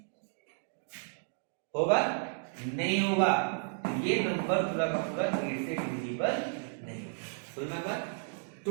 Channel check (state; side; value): silent; left; 56 dB below the other